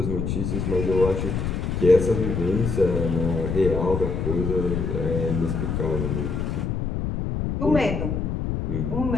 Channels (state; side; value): noise; left; rumble, 1 dB below the sound